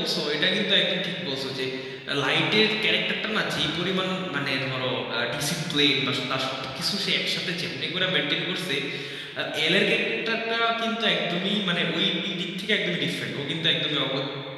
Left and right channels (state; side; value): identical; both; correlation 1.00